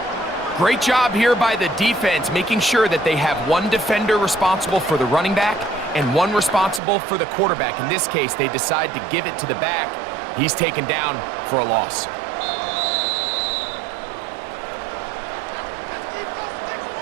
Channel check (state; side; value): drops out; left; at 6.8 s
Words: Great job here by the defense, making sure that they have one defender responsible for the running back and one responsible for the quarterback. In this case, they decide to give it to the back. He's taken down for a loss.